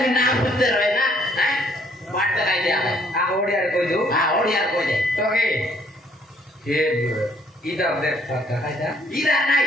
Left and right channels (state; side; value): normal; both; correlation 0.64